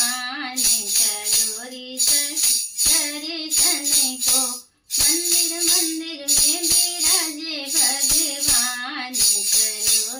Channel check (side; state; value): both; identical; correlation 1.00